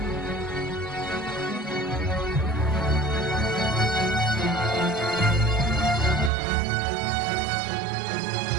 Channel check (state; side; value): drops out; left; at 6.3 s